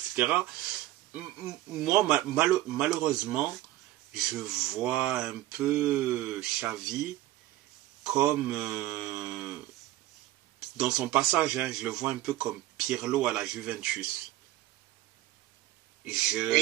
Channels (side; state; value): left; quieter; 15.5 dB